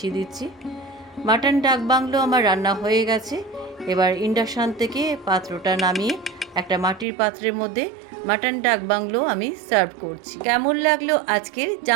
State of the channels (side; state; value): left; drops out; at 7.1 s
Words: দিচ্ছি। মাটন ডাক বাংলো আমার রান্না হয়ে গেছে। এবার ইন্ডাকশান থেকে পাত্রটা নামিয়ে একটা মাটির পাত্রের মধ্যে মাটন ডাক বাংলো আমি সার্ভ করছি। কেমন লাগলো আজকের